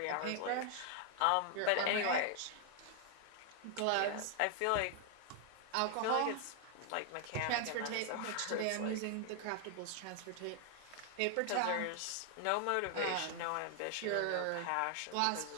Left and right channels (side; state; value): both; different; correlation 0.00